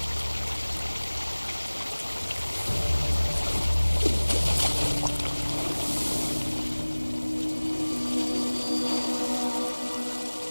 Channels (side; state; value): both; inverted; correlation -1.00